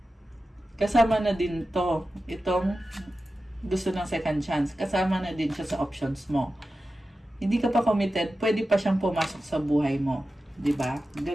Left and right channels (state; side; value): normal; both; correlation 0.93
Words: Kasama na din to. Itong gusto ng second chance. Kasama na din siya sa options mo. Hindi ka pa committed, pwede pa siyang pumasok sa buhay mo. 'Di ba?